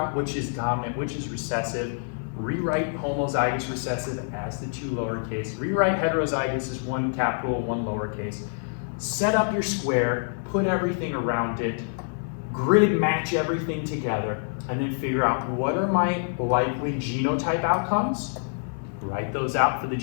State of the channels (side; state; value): right; silent; digital silence